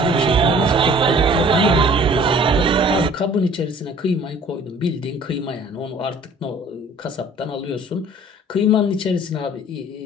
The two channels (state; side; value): normal; both; correlation 0.51